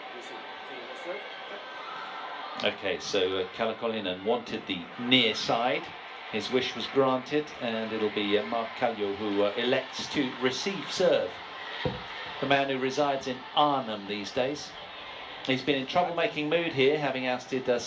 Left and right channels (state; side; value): identical; both; correlation 1.00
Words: You see, that's right? Okay, so Kalle Koljonen wanted the near side. His wish was granted, and it'll be Mark Caljouw who elects to receive serve. The man who resides in Arnhem these days. He's been in troublemaking mood here, having ousted